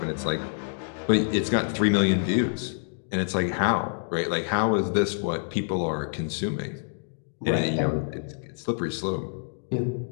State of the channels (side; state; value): right; silent; digital silence